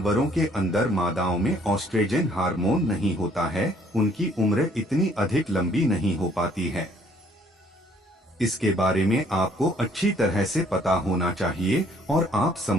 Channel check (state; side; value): normal; both; correlation 0.62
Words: के अंदर मादाओं में ऑस्ट्रेजन हार्मोन नहीं होता है, उनकी उम्र इतनी अधिक लंबी नहीं हो पाती है। इसके बारे में आपको अच्छी तरह से पता होना चाहिए और आप